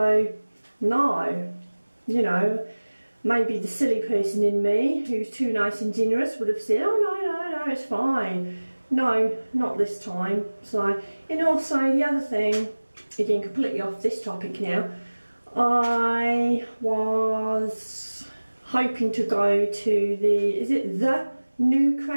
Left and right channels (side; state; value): both; inverted; correlation -1.00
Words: no. You know, maybe the silly person in me who's too nice and generous would have said, oh no, it's fine. No, not this time. So, and also the other thing, again completely off this topic now, I was hoping to go to is it the New